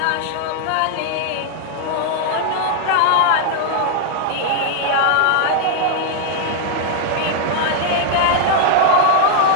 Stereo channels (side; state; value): both; different; correlation 0.00